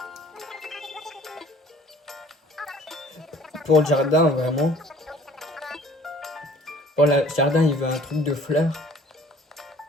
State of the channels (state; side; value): normal; both; correlation 0.53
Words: Pour le jardin, vraiment. Pour le jardin, il veut un truc de fleurs.